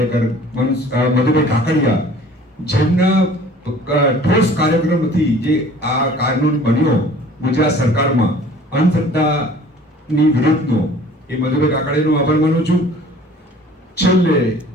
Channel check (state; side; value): normal; both; correlation 0.49